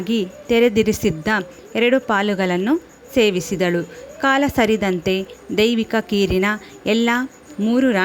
ತೆರೆದಿರಿಸಿದ್ದ 2 ಪಾಲುಗಳನ್ನು ಸೇವಿಸಿದಳು. ಕಾಲ ಸರಿದಂತೆ ದೈವಿಕ ಕೀರಿನ ಎಲ್ಲ 3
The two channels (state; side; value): identical; both; correlation 1.00